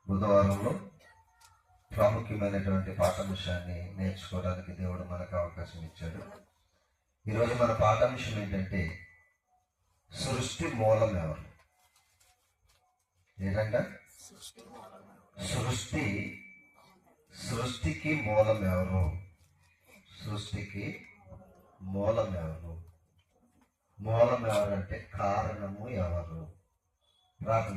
బుధవారంలో ప్రాముఖ్యమైనటువంటి పాఠాంశాన్ని నేర్చుకోవడానికి దేవుడు మనకు అవకాశం ఇచ్చాడు. ఈరోజు మన పాఠాంశం ఏంటంటే సృష్టి మూలం ఎవరు? ఏంటంటే సృష్టికి మూలం ఎవరు? సృష్టికి మూలం ఎవరు? మూలం ఎవరంటే కారణము ఎవరు? ప్రార్థన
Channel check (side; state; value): both; identical; correlation 1.00